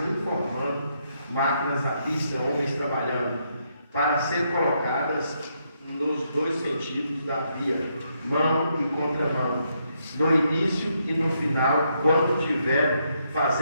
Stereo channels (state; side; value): inverted; both; correlation -0.77